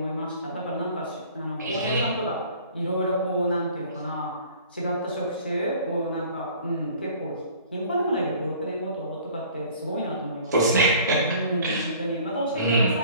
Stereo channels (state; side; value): inverted; both; correlation -0.50